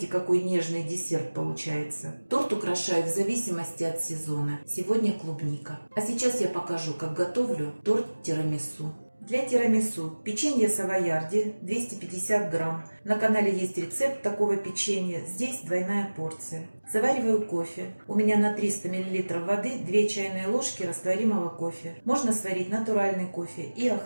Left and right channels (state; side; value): inverted; both; correlation -1.00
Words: какой нежный десерт получается. Торт украшаю в зависимости от сезона. Сегодня клубника. А сейчас я покажу, как готовлю торт тирамису. Для тирамису печенье савойярди 250 грамм. На канале есть рецепт такого печенья, здесь двойная порция. Завариваю кофе. У меня на 300 мл воды 2 чайные ложки растворимого кофе. Можно сварить натуральный кофе и